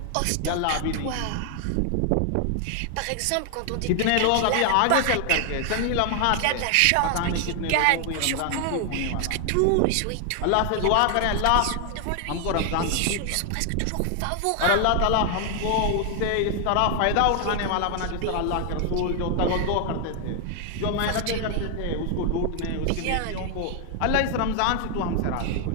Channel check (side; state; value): both; different; correlation 0.00